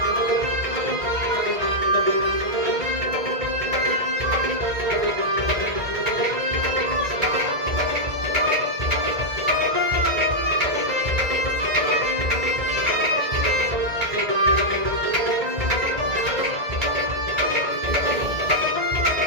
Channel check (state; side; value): late; left; 1.8 ms